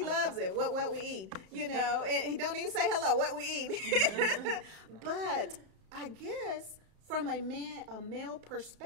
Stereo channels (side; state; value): left; late; 34 ms